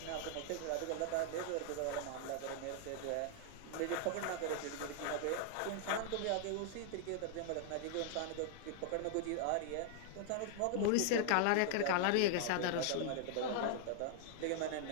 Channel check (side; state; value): both; different; correlation 0.00